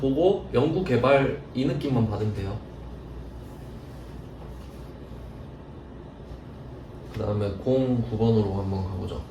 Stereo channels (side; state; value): both; identical; correlation 1.00